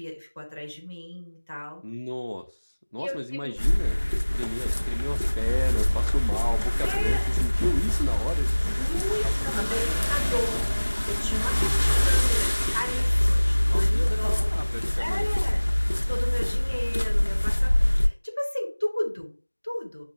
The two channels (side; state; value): both; inverted; correlation -1.00